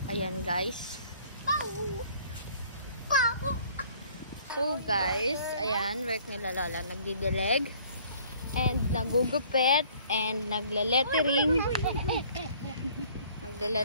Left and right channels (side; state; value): both; inverted; correlation -0.56